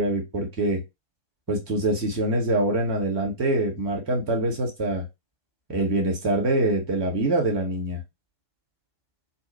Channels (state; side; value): late; right; 4.2 ms